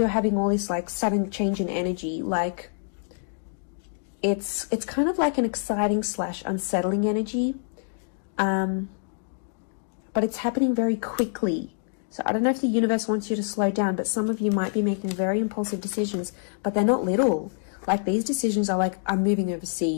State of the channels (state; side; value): silent; right; digital silence